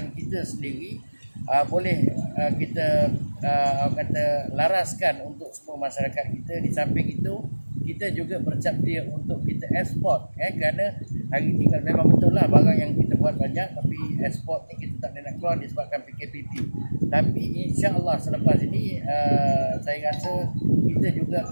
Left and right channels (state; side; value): inverted; both; correlation -1.00